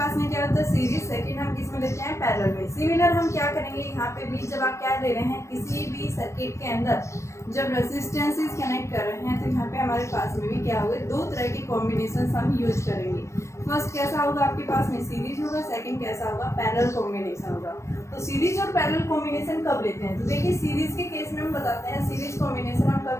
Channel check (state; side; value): late; right; 0.14 ms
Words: में क्या होता है सीरीज, सेकंड हम किस में लेते हैं, पैरेलल में। सिमिलर हम क्या करेंगे यहाँ पे भी, जब आप क्या ले रहे हैं किसी भी सर्किट के अंदर जब रेसिस्टेंसेस कनेक्ट कर रहे हैं, तो यहाँ पे हमारे पास में भी क्या होगा, 2 तरह के कॉम्बिनेशन हम यूज करेंगे। फर्स्ट कैसा होगा आपके पास में सीरीज होगा, सेकंड कैसा होगा पैरेलल कॉम्बिनेशन होगा। तो सीरीज और पैरेलल कॉम्बिनेशन कब लेते हैं, तो देखिए सीरीज के केस में हम बताते हैं सीरीज कॉम्बिनेशन हम